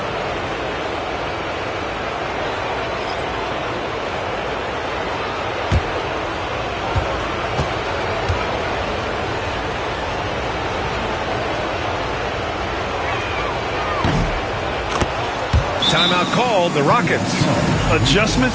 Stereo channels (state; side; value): identical; both; correlation 1.00